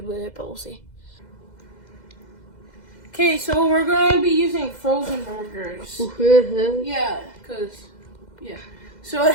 with it, but we'll see. Okay, so we're going to be using frozen burgers. Yeah, because, yeah. So,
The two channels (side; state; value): right; late; 2.0 ms